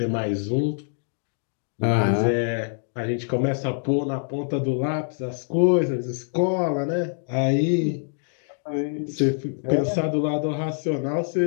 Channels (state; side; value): silent; right; digital silence